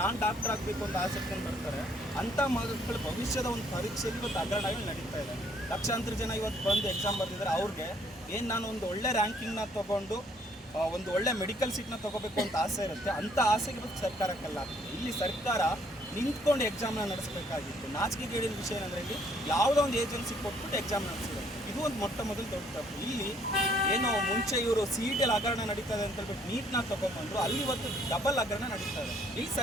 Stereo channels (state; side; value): normal; both; correlation 0.65